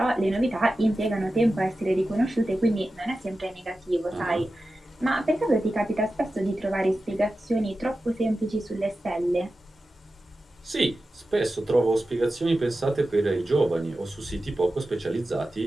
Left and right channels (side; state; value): both; normal; correlation 0.93